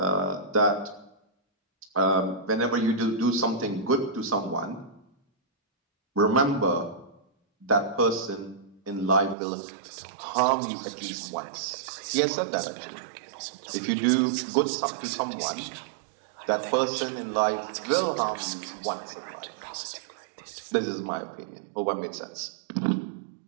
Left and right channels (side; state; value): left; drops out; at 9.3 s